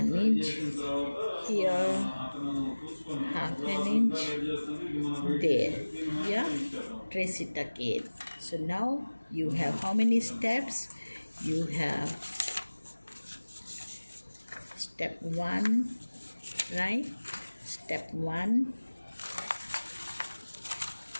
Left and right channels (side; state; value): both; inverted; correlation -1.00